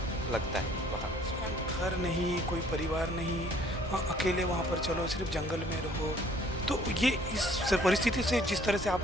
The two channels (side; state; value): both; normal; correlation 0.58